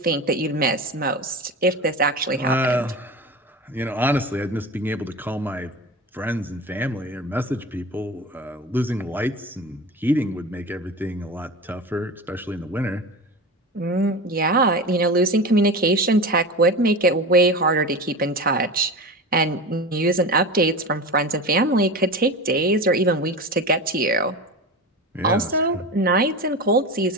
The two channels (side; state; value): both; normal; correlation 0.28